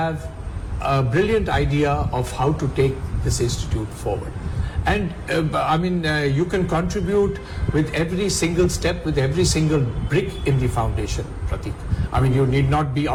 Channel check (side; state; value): both; identical; correlation 1.00